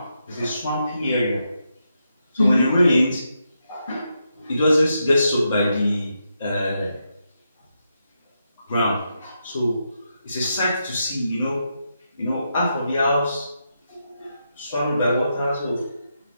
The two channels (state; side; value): inverted; both; correlation -0.84